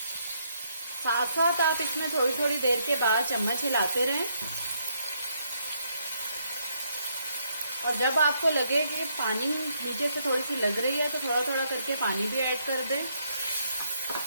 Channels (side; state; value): both; inverted; correlation -0.74